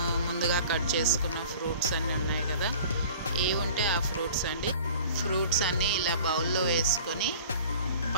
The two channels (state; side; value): inverted; both; correlation -0.45